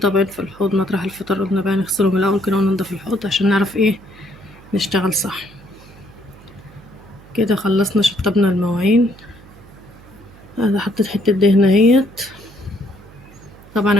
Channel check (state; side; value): noise; right; hum, 22 dB below the sound